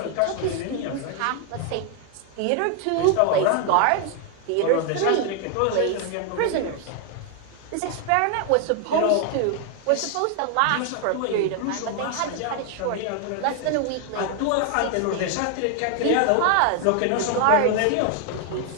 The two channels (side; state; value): both; different; correlation 0.00